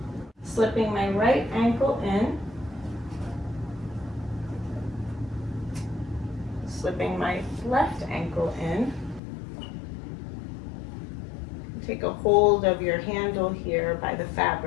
slipping my right ankle in, slipping my left ankle in. Take a hold of your handle here by the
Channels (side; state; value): right; drops out; at 9.2 s